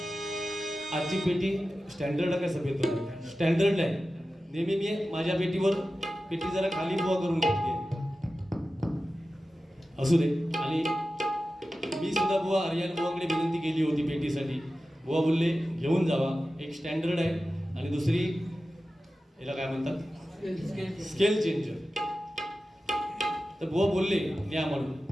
आजची पेटी स्टँडर्ड काय सभेत स्टँडर्ड आहे. नेहमी मी माझ्या पेटीवर पेटी जरा खाली बुवा करून घेतली असू दे. आणि मी सुद्धा बुवा आर्यन बुवाकडे विनंती केली होती पेटीसाठी. बुवा बोलले घेऊन जावा, एक स्टँडर्ड आहे आणि दुसरी याला काय म्हणतात स्केल चेंजर. तर बुवा बोलले घ्या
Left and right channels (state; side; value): normal; both; correlation 0.94